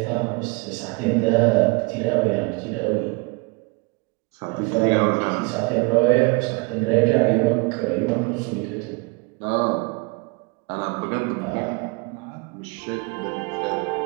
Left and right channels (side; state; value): left; quieter; 28.4 dB